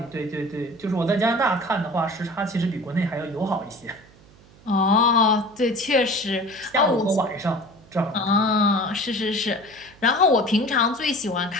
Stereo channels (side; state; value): right; noise; hum, 26 dB below the sound